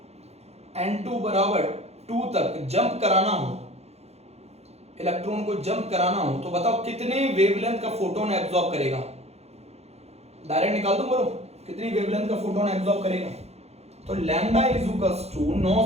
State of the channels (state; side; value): late; left; 0.31 ms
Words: n2 बराबर 2 तक जंप कराना हो, इलेक्ट्रॉन को जंप कराना हो तो बताओ कितने वेवलेंथ का फोटोन एब्जॉर्ब करेगा। डायरेक्ट निकाल दो, बोलो कितनी वेवलेंथ का फोटोन एब्जॉर्ब करेगा। तो lambda is equals to